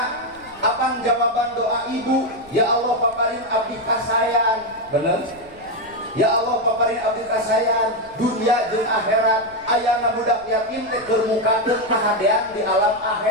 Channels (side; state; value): left; noise; rumble, 26 dB below the sound